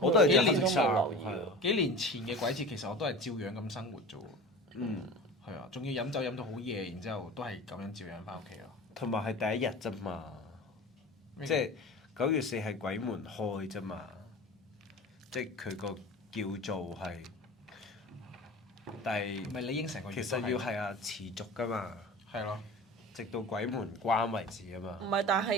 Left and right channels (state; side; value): normal; both; correlation 0.35